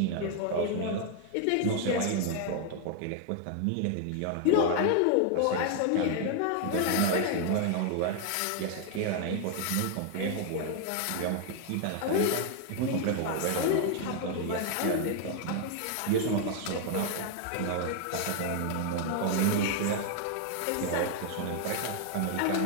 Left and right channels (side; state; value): both; different; correlation 0.00